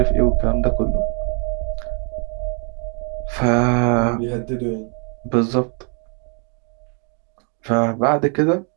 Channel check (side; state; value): left; quieter; 39.1 dB